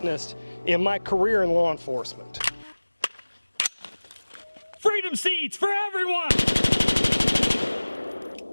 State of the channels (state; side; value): inverted; both; correlation -1.00